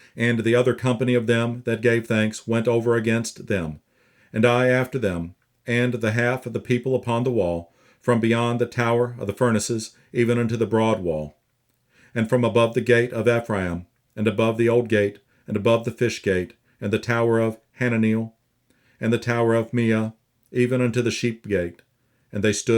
And the other company of them that gave thanks went over against them, and I after them, and the half of the people upon the wall, from beyond the tower of the furnaces, even unto the broad wall, and from above the gate of Ephraim, and above the old gate, and above the fish gate, and the tower of Hananeel, and the tower of Meah, even unto the sheep gate, and they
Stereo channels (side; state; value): both; identical; correlation 1.00